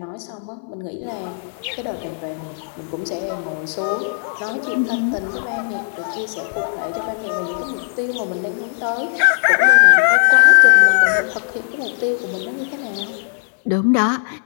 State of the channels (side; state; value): right; silent; 60 dB below the other